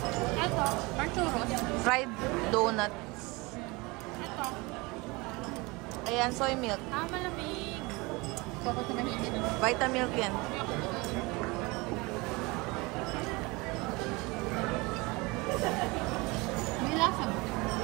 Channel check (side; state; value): left; quieter; 24.8 dB